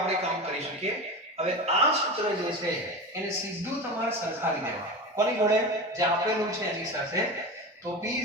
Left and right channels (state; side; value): normal; both; correlation 0.26